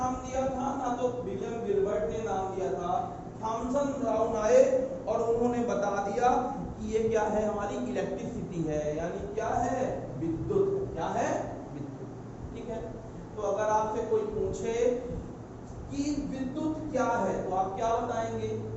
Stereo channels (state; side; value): identical; both; correlation 1.00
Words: दिया था, ना तो विलियम गिलबर्ट ने नाम दिया था। थॉमसन ब्राउन आए और उन्होंने बता दिया कि ये क्या है? हमारी इलेक्ट्रिसिटी है, यानी क्या है? विद्युत। क्या है? विद्युत। ठीक है। तो अगर आपसे कोई पूछे कि विद्युत क्या है तो आप क्या बताएंगे?